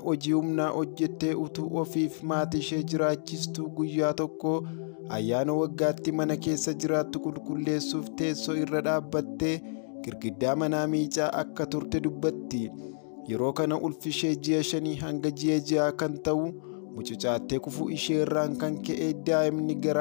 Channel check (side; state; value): right; silent; digital silence